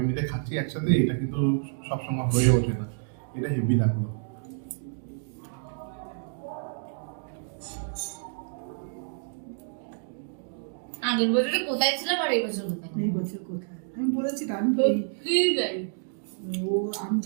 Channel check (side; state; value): left; silent; digital silence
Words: মিলে খাচ্ছি একসাথে, এটা কিন্তু সবসময় হয়ে ওঠে না। এটা হেভি লাগলো। আগের বছরে কোথায় ছিলাম আর এই বছর কোথায় এই বছর কোথায়? আমি বলেছি তো, আমি সত্যি তাই ও আমি